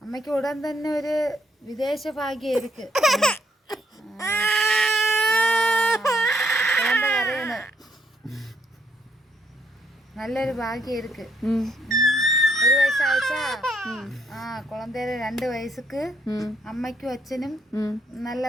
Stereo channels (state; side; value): normal; both; correlation 0.72